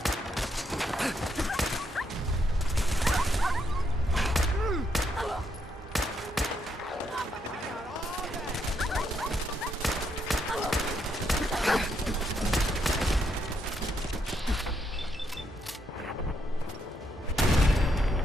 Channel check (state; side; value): normal; both; correlation 0.77